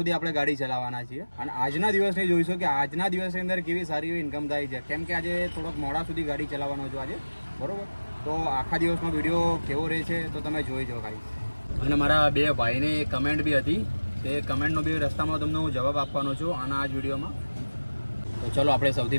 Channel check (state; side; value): inverted; both; correlation -1.00